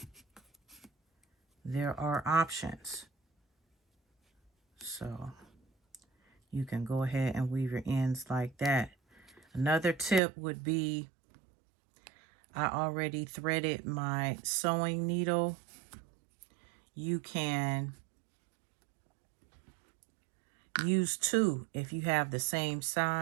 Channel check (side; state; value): left; drops out; at 10.2 s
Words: there are options. So you can go ahead and weave your ends like that. Another tip would be, I already threaded my sewing needle. You can use 2 if you have the same